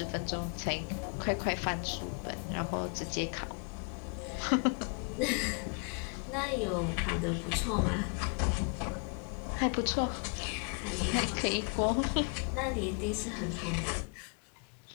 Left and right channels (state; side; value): quieter; right; 38.2 dB